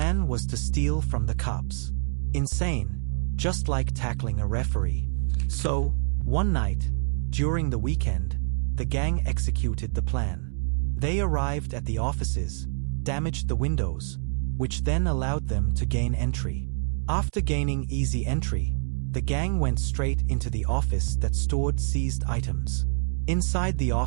was to steal from the cops. Insane, just like tackling a referee. So, one night, during the weekend, the gang executed the plan. They arrived at the offices, damaged the windows, which then allowed them to gain entry. After gaining easy entry, the gang went straight into the office that stored seized items. Inside the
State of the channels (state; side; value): silent; left; digital silence